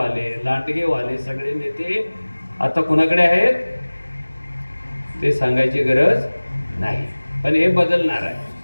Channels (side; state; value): both; inverted; correlation -1.00